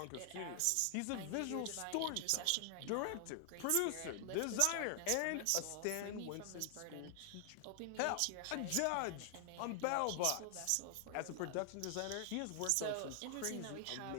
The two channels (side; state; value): both; different; correlation 0.00